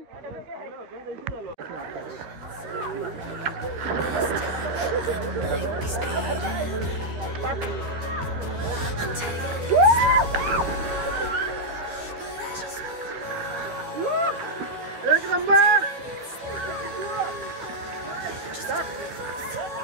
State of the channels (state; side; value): late; left; 13 ms